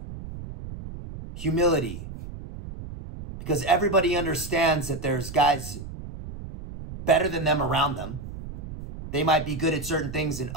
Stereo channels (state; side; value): noise; right; rumble, 11 dB below the sound